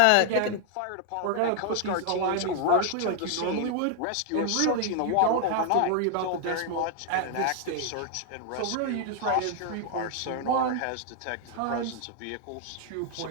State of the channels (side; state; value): both; different; correlation 0.00